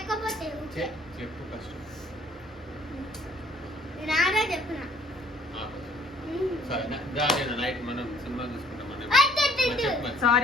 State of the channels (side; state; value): both; normal; correlation 0.59